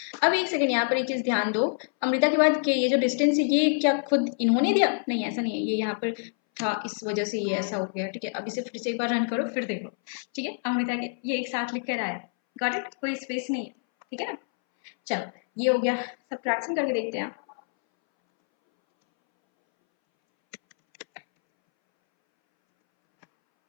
अब एक सेकंड यहाँ पर एक चीज ध्यान दो, अमृता के बाद के ये जो डिस्टेंस है ये क्या खुद इन्होंने दिया, नहीं ऐसा नहीं है, ये यहाँ पर था इस वजह से ये ऐसा हो गया, ठीक है। अब इसे फिर से एक बार रन करो, फिर देखो, ठीक है। अमृता के ये एक साथ लिख कर आया, गॉट इट, कोई स्पेस नहीं है, ठीक है ना। चलो ये हो गया, सब्ट्रैक्शन करके देखते हैं।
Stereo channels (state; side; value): silent; right; 61 dB below the other